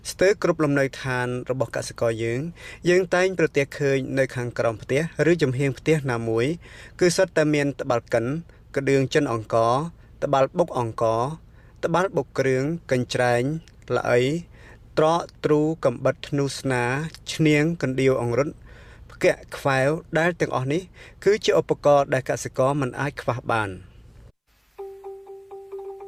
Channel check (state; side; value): identical; both; correlation 1.00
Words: ស្ទើរគ្រប់លំនៅឋានរបស់កសិករយើងតែងប្រទះឃើញនៅខាងក្រោមផ្ទះឬចំហៀងផ្ទះណាមួយគឺសុទ្ធតែមានតបាល់កិនក្តឿងចិនអង្ករតបាល់បុកអង្ករតបាល់បុកគ្រឿងកញ្ច្រែងល្អីត្រកទ្រូកំបិតធ្នូស្នាឈ្នាងកណ្ដៀវអង្រុតផ្គាក់ខ្វែវដែលទាំងអស់នេះគឺជាឧបករណ៍ដែលកសិករមិនអាចខ្វះបាន